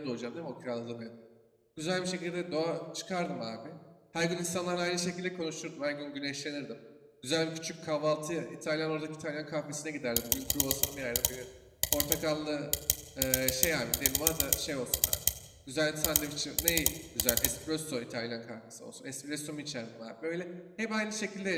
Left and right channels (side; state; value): both; identical; correlation 1.00